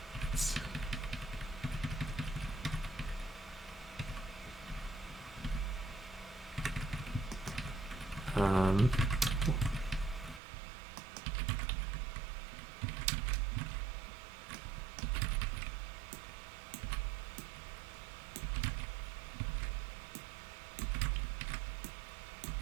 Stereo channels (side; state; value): left; drops out; at 10.4 s